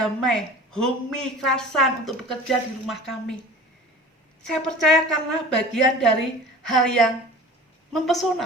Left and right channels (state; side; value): normal; both; correlation 0.40